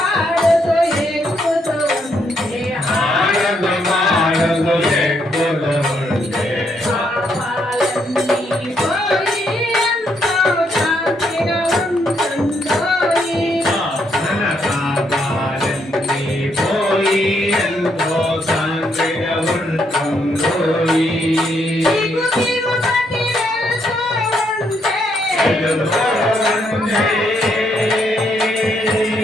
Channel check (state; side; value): normal; both; correlation 0.75